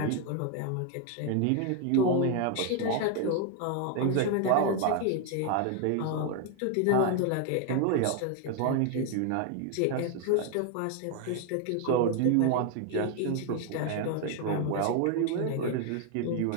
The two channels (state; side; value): different; both; correlation 0.01